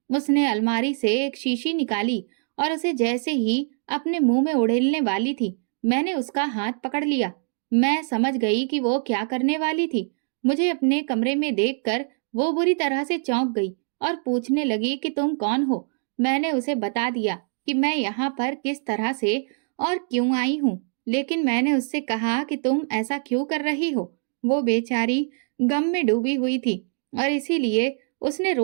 उसने अलमारी से एक शीशी निकाली और उसे जैसे ही अपने मुंह में उड़ेलने वाली थी, मैंने उसका हाथ पकड़ लिया। मैं समझ गई कि वो क्या करने वाली थी। मुझे अपने कमरे में देखकर वो बुरी तरह से चौंक गई और पूछने लगी कि तुम कौन हो। मैंने उसे बता दिया कि मैं यहाँ पर किस तरह से और क्यों आई हूँ, लेकिन मैंने उससे कहा कि तुम ऐसा क्यों कर रही हो। वो बेचारी गम में डूबी हुई थी और इसीलिए उसने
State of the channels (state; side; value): silent; left; 60 dB below the other